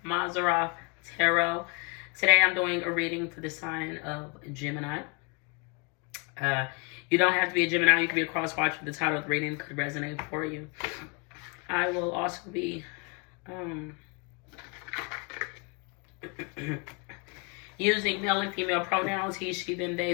Mazarov Tarot. Today I'm doing a reading for the sign of Gemini. You don't have to be a Gemini. You can be a cross-watcher. The title of the reading could resonate for you. I will also be using male and female pronouns, he, she, them, they,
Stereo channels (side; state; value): right; quieter; 33.2 dB